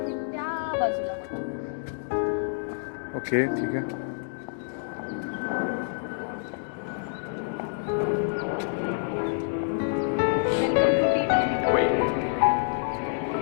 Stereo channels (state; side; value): silent; right; digital silence